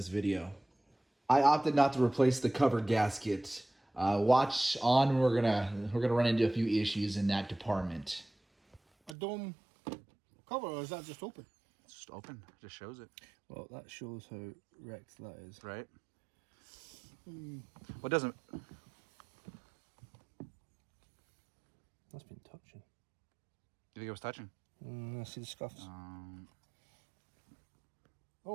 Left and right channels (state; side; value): drops out; left; at 9.2 s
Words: video. I opted not to replace the cover gasket. Watch on. We're gonna run into a few issues in that department. A dome cover, or is that just open? It's just open. It just shows it. Well, that shows how wrecked that is. Right? What doesn't... That's been touching. You think it was touching? I see the scuffs.